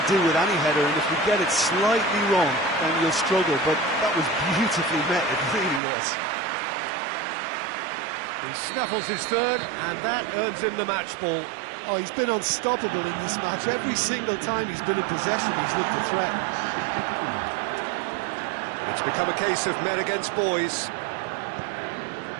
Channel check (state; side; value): drops out; left; at 5.8 s